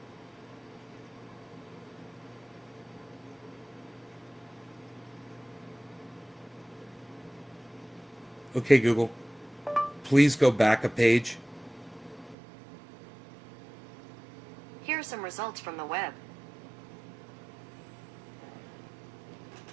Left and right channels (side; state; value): left; drops out; at 12.4 s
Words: Okay, Google. Please go back a page. Here are some results from the web.